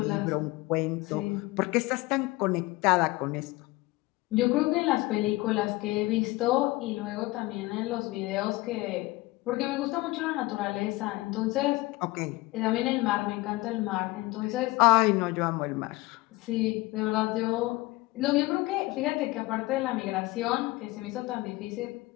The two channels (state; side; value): quieter; right; 20.8 dB